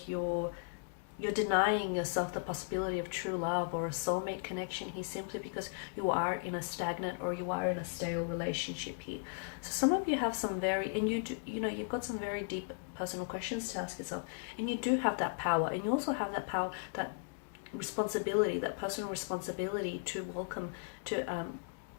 you're denying yourself the possibility of true love or a soulmate connection here, simply because you are in a stagnant or you are in a stale relationship here. So some of you have some you've got some very deep personal questions to ask yourself, and you do have that power, and you also have that power, that responsibility, that personal responsibility to welcome, to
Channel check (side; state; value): right; silent; digital silence